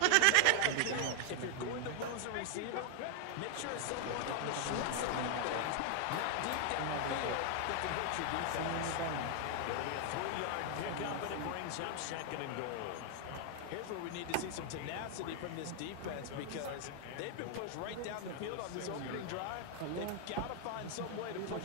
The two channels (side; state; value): both; different; correlation 0.00